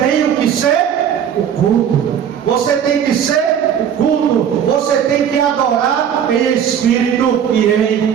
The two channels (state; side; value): quieter; left; 8.8 dB